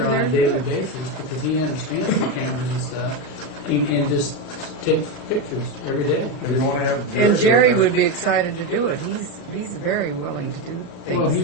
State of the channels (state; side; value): late; right; 38 ms